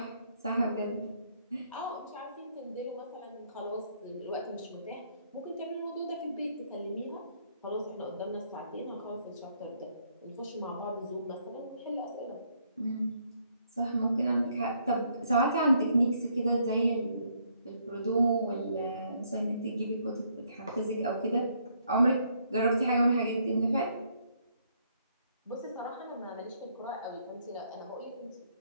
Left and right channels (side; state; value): both; inverted; correlation -0.70